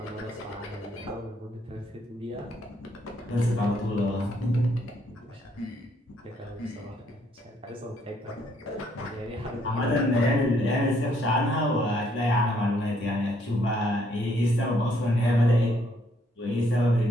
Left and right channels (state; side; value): normal; both; correlation 0.69